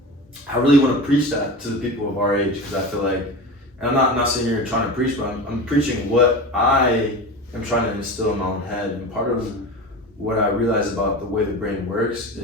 I really want to preach that to the people of our age, because I feel like, and I'm not sitting here trying to preach, but I'm preaching what I am trying to instill in my own head. And part of what I realize about the way the brain works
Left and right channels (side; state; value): both; normal; correlation 0.29